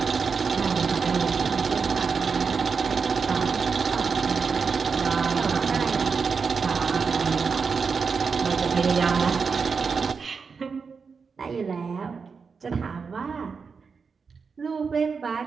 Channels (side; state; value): left; quieter; 5.4 dB